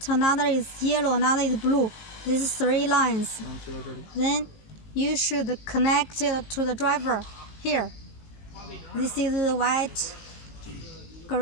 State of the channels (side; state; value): right; late; 19 ms